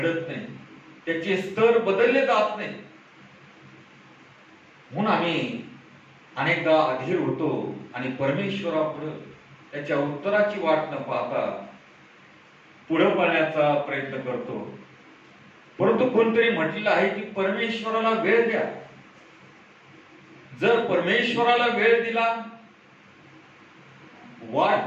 नाही, त्याचे स्तर बदलले जात नाही. म्हणून आम्ही अनेकदा अधीर होतो आणि परमेश्वरापुढे त्याच्या उत्तराची वाट न पाहता पुढे पाहण्याचा प्रयत्न करतो. परंतु कोणतरी म्हटलेलं आहे की परमेश्वराला वेळ द्या. जर परमेश्वराला वेळ दिला, वाट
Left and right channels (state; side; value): identical; both; correlation 1.00